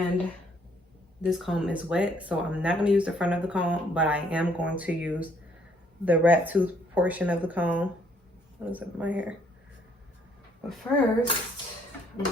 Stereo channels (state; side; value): normal; both; correlation 0.66